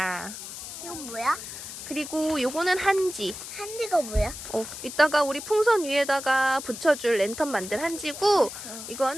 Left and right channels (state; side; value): noise; left; hiss, 10 dB below the sound